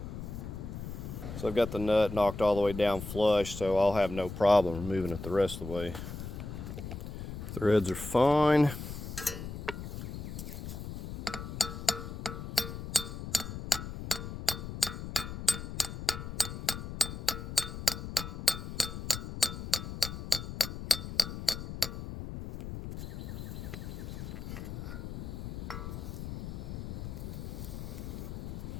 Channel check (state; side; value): noise; left; rumble, 7 dB below the sound